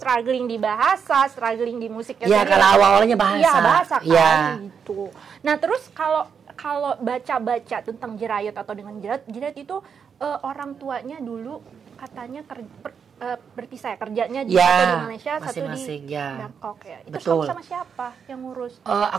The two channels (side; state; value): left; quieter; 6.7 dB